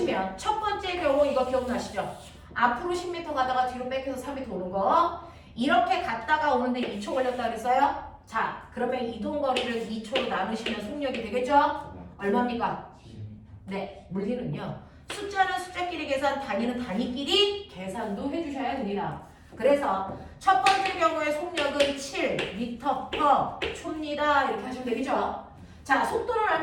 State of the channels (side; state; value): both; identical; correlation 1.00